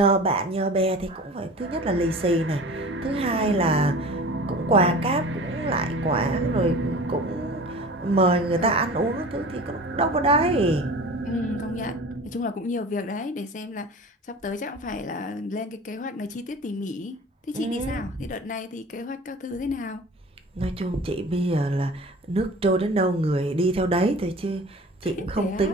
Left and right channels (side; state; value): both; normal; correlation 0.39